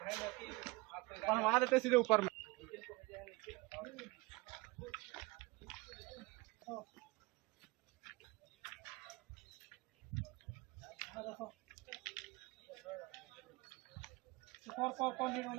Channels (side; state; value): left; quieter; 24.2 dB